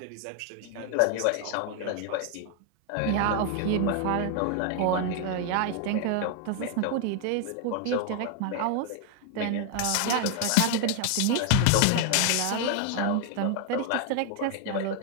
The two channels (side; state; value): both; different; correlation 0.00